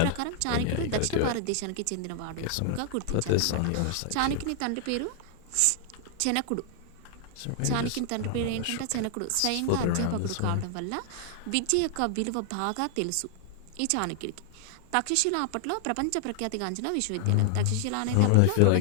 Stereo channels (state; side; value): different; both; correlation 0.00